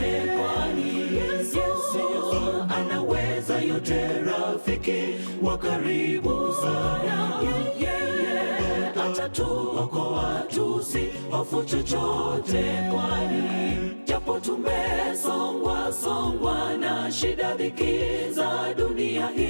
kwani Yesu anaweza yote, rafiki wa karibu sana. Yeye atatuokoa, tusihofu chochote, kwani japo tumesongwa na shida, dhiki za dunia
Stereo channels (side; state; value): both; inverted; correlation -1.00